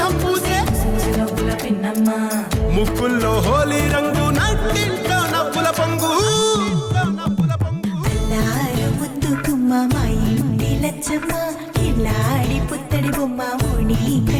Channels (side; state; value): both; identical; correlation 1.00